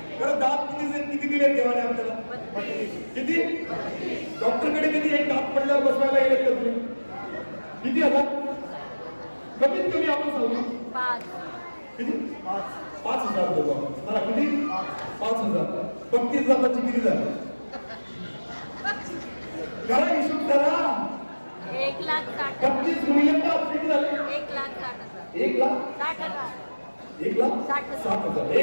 खरं दात किती दिले देवाने आपल्याला? किती? डॉक्टरकडे किती? एक दात पडल्यावर बसवायला गेले का तुम्ही? किती हजार? कमीत कमी आपण सांगू किती? 5,000 देऊ आपण. किती? 5,000. 35 दाताची किती झाली? करा हिशोब करा. 1,60,000. 35 गुणिले 5 किती झाले? 1,60,000. 1,60,000. 1,60,000.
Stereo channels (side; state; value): both; inverted; correlation -1.00